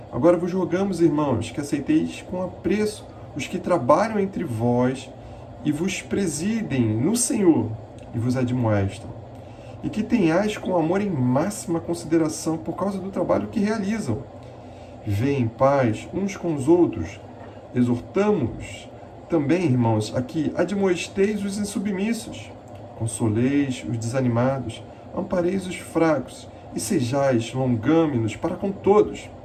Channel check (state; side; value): identical; both; correlation 1.00